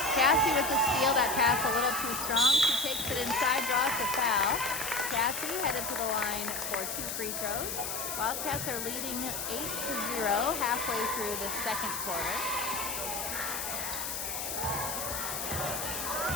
Cassie with the steal, that pass a little too strong. She takes it inside, draws the foul. Cassie headed to the line for 2 free throws. Wildcats are leading 8-0 halfway through the second quarter.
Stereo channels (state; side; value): noise; left; hiss, 4 dB below the sound